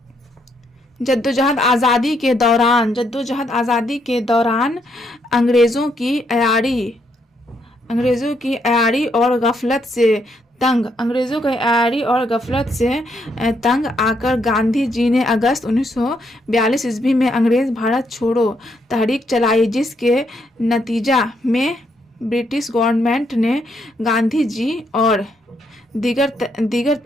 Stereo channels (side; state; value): both; normal; correlation 0.75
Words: जद्दोजहद आज़ादी के दौरान अंग्रेज़ों की अयारी और गफलत से तंग आकर गांधी जी ने अगस्त 1942 ईस्वी में अंग्रेज़ भारत छोड़ो तहरीक चलाई जिसके नतीजा में ब्रिटिश गवर्नमेंट ने गांधी जी और दीगर